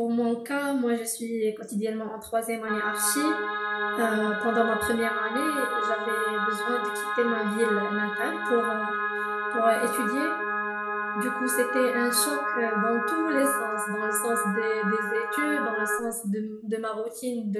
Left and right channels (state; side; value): identical; both; correlation 1.00